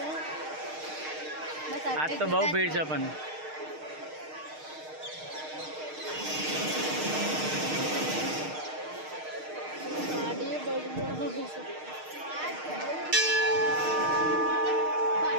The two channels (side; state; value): left; late; 6.5 ms